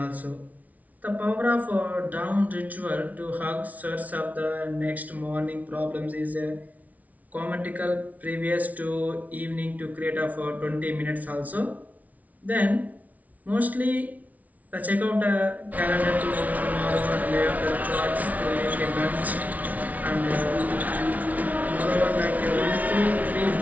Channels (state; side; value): late; left; 0.072 ms